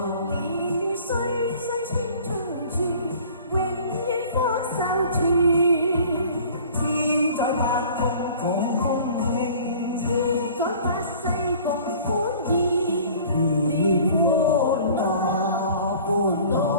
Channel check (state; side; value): inverted; both; correlation -0.48